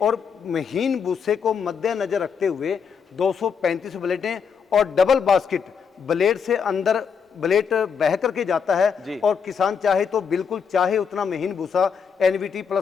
महीन भूसे को मद्देनजर रखते हुए 235 ब्लेडें और डबल बास्केट, ब्लेड से अंदर ब्लेड बह करके जाता है, और किसान चाहे तो बिल्कुल चाहे उतना महीन भूसा NVT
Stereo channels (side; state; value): right; quieter; 6.5 dB